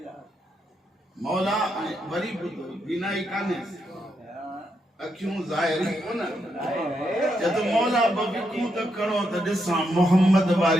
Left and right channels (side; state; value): both; normal; correlation 0.81